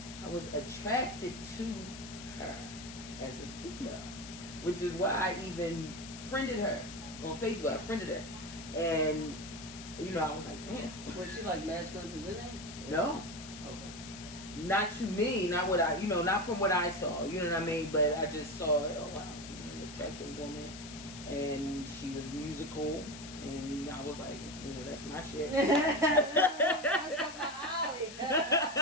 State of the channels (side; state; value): left; noise; hiss, 13 dB below the sound